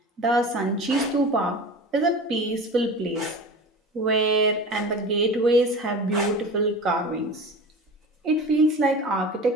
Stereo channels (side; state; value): both; normal; correlation 0.34